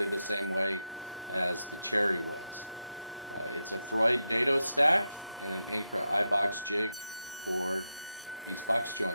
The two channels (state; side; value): inverted; both; correlation -0.87